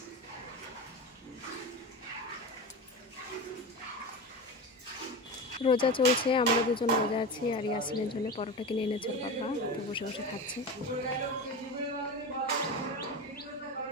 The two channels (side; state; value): both; normal; correlation 0.25